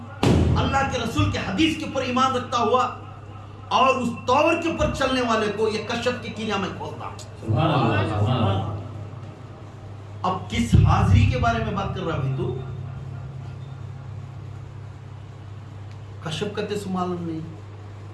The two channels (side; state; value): both; identical; correlation 1.00